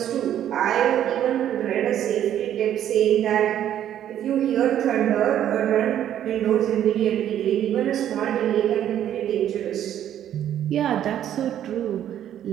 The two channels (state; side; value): quieter; left; 10.8 dB